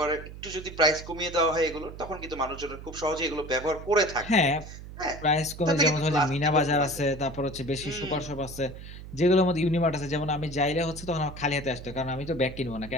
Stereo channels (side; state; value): right; noise; hum, 13 dB below the sound